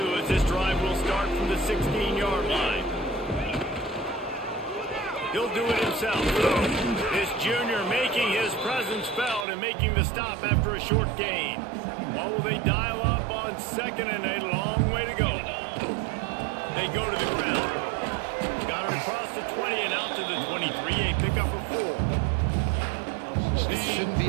as this drive will start from the 16-yard line. He'll do it himself. This junior making his presence felt and making the stop after a short gain. What will they dial up on 2nd and a long way to go? They go to the ground. Got it across the 20 and out to the 23. A pickup of 4. This shouldn't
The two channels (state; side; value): drops out; left; at 9.5 s